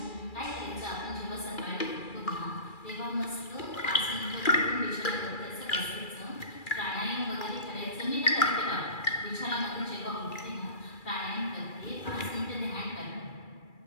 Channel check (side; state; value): right; late; 2.3 ms